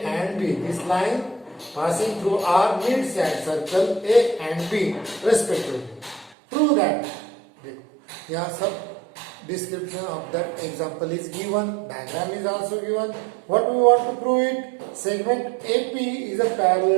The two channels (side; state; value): left; drops out; at 6.4 s